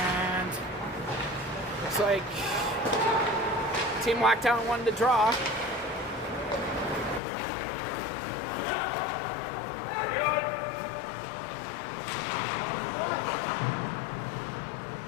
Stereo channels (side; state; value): right; drops out; at 7.2 s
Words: looks like Team Lockdown won the draw.